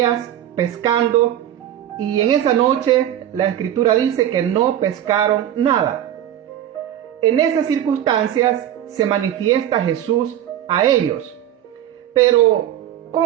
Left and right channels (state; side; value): quieter; left; 11.4 dB